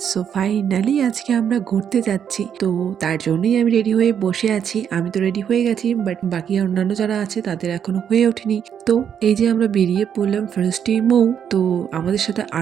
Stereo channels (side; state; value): left; quieter; 8.4 dB